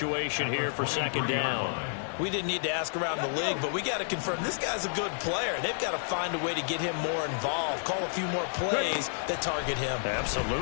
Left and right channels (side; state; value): right; silent; digital silence